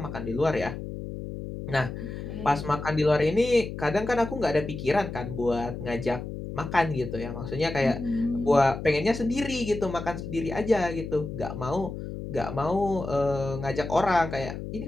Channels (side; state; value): left; noise; hum, 8 dB below the sound